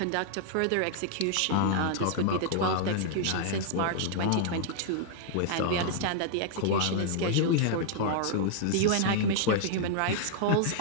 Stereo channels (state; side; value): different; both; correlation -0.01